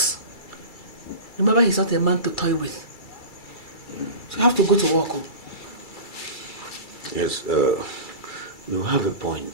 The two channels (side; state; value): right; late; 2.3 ms